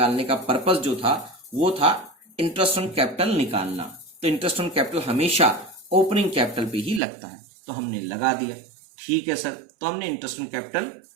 का पर्पस जो था वो था इंटरेस्ट ऑन कैपिटल निकालना। तो इंटरेस्ट ऑन कैपिटल हमेशा ओपनिंग कैपिटल पे ही लगता है, तो हमने लगा दिया। ठीक है सर, तो हमने इंटरेस्ट ऑन कैपिटल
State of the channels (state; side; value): drops out; left; at 7.0 s